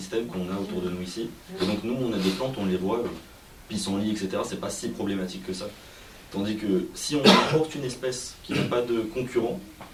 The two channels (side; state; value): both; identical; correlation 1.00